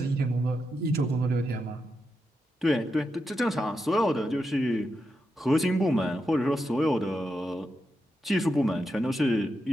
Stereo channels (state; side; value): normal; both; correlation 0.86